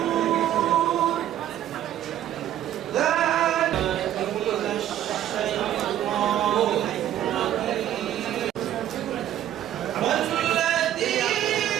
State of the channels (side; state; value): left; quieter; 11.8 dB